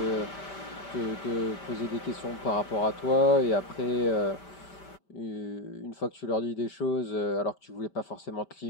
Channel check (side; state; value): right; late; 5.1 ms